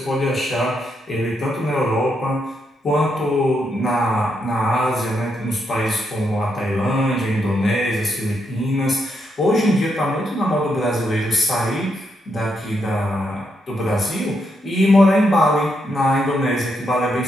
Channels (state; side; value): normal; both; correlation 0.80